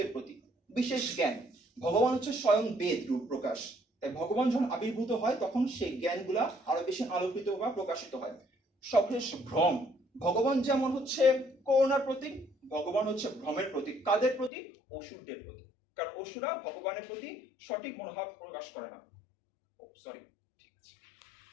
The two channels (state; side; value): drops out; right; at 14.5 s